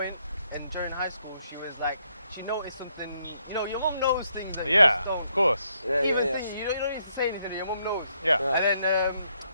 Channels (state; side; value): inverted; both; correlation -0.74